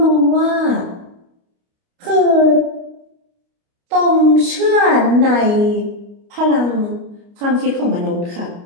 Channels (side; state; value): left; late; 29 ms